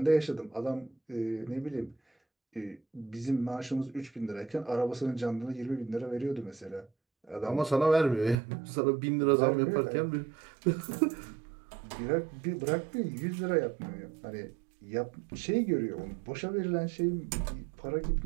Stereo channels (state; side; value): drops out; left; at 8.3 s